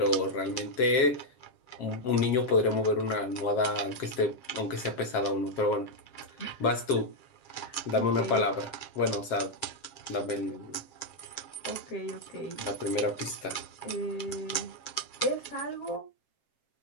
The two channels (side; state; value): right; late; 7.5 ms